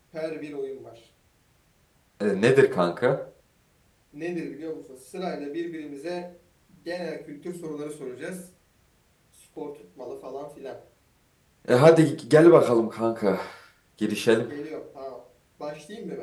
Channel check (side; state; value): both; identical; correlation 1.00